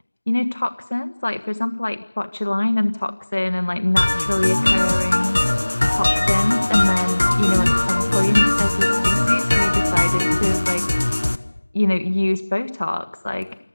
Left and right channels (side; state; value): both; inverted; correlation -1.00